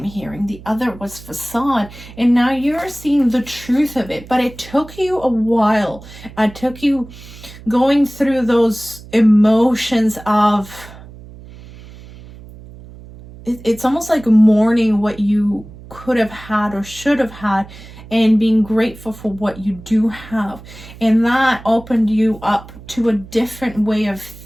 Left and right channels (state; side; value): noise; right; hum, 18 dB below the sound